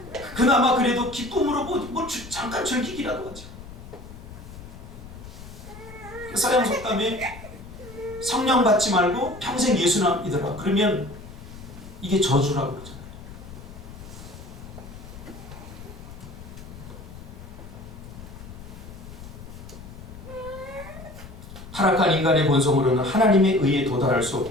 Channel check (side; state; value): left; noise; rumble, 15 dB below the sound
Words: 그나마 그래도 기쁨으로 잠깐 즐기기라도 하죠. 서양 속담에 성령 받지 말고 평생 예수만 믿어라. 그러면 이게 저주라고 그러잖아요. 타락한 인간의 본성으로는 하나님의 의에 도달할 수